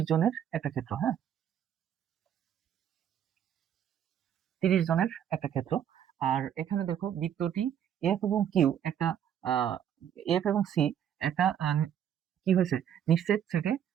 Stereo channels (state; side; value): quieter; left; 9.5 dB